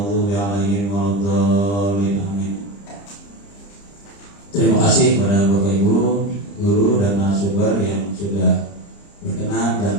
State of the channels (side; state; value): right; late; 30 ms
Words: 'alaihim waladdallin. Amin. Terima kasih kepada Bapak Ibu, guru dan narasumber yang sudah berkenan dan